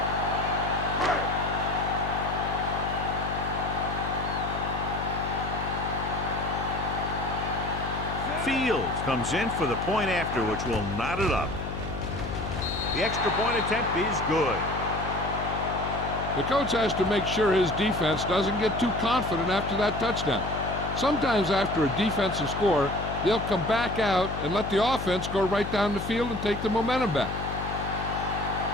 Fields comes in for the point after, which will knot it up. The extra point attempt is good. The coach has to make sure his defense doesn't get too confident after that touchdown. Sometimes after a defensive score, they'll come back out and let the offense go right down the field and take the momentum back.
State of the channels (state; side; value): noise; left; hum, 6 dB below the sound